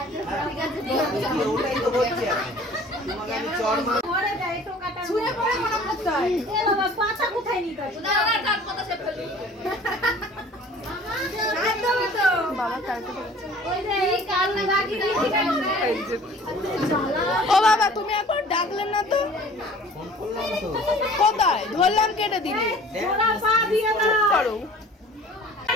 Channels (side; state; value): both; normal; correlation 0.48